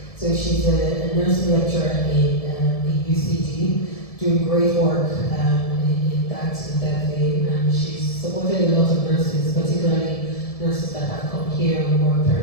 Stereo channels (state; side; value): late; right; 1.7 ms